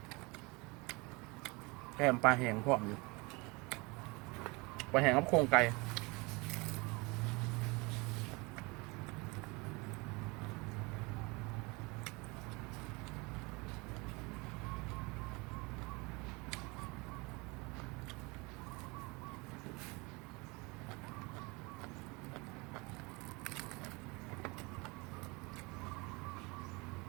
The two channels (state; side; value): quieter; left; 26.5 dB